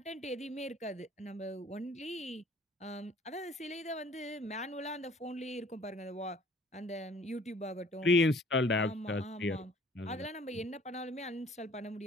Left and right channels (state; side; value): normal; both; correlation 0.54